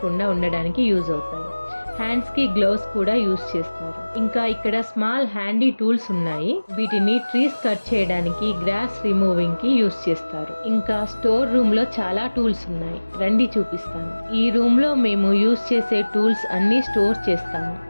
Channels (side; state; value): both; inverted; correlation -1.00